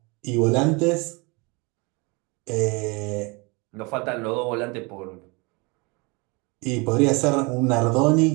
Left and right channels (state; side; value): quieter; left; 28.4 dB